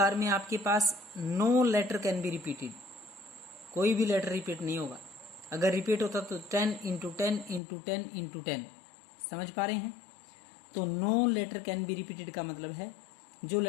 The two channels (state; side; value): drops out; right; at 7.6 s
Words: में आपके पास 9 लेटर कैन बी रिपीटेड, कोई भी लेटर रिपीट नहीं होगा। अगर रिपीट होता तो 10 इंटू 10 इंटू 10 इंटू 10। समझ पा रहे हैं? तो 9 लेटर कैन बी रिपीटेड का मतलब है जो